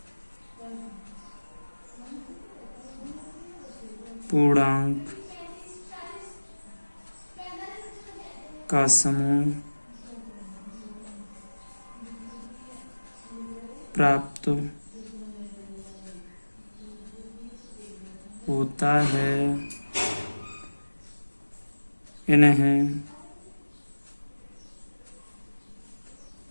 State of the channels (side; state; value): both; inverted; correlation -1.00